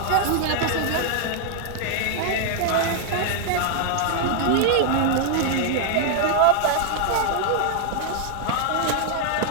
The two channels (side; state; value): both; different; correlation 0.00